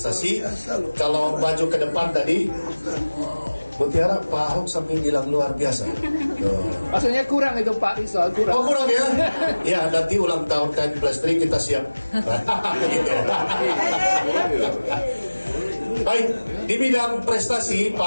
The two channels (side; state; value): both; inverted; correlation -1.00